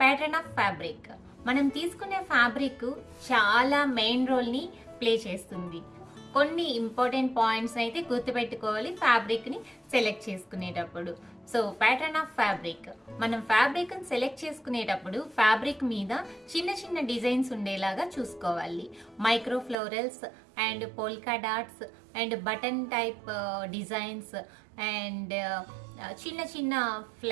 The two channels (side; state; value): left; drops out; at 19.8 s